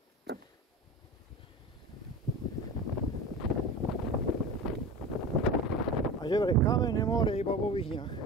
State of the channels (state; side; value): normal; both; correlation 0.31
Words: A že vraj kamenné more iba vo Vyhniach.